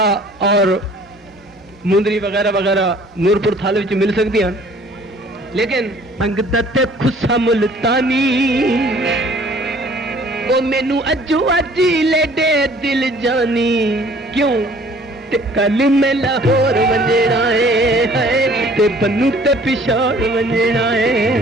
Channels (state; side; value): normal; both; correlation 0.54